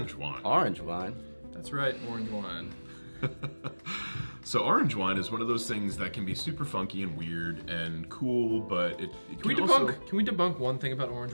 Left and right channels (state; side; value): inverted; both; correlation -1.00